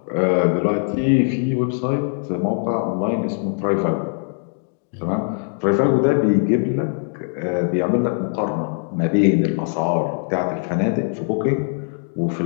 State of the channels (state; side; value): silent; right; digital silence